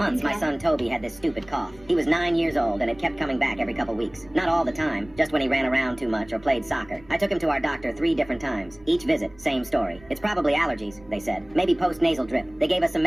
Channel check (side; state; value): right; noise; rumble, 24 dB below the sound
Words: my son Toby had this stupid cough. He was 9 years old, and it kept coming back every couple weeks. Not all the time, just when he ran around too much or played soccer. I took him to our doctor 3 different times. Each visit, same story. It's probably allergies, they said. Maybe post-nasal drip. They gave us some